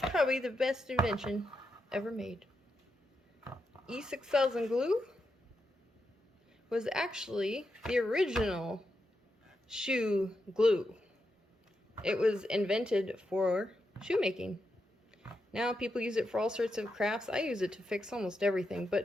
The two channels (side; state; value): both; normal; correlation 0.85